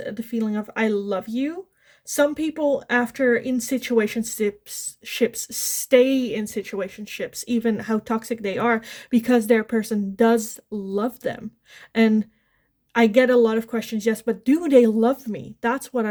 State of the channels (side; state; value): both; identical; correlation 1.00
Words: the feeling of I love you. Some people after in situationships stay in situationships, even how toxic they are, because their person does love them. And I get a lot of questions, yes, but do they love me? That's what